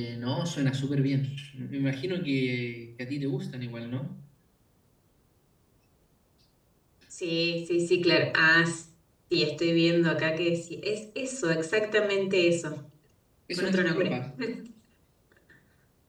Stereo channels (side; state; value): both; identical; correlation 1.00